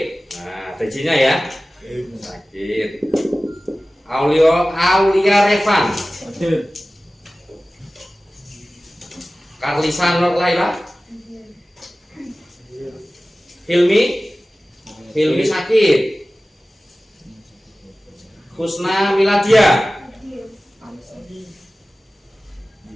Nah, tejinya ya, sakit. Aulia Revan, hadir. Karlisa Nur Laila, Hilmi sakit. Husna Miladia,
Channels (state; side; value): normal; both; correlation 0.97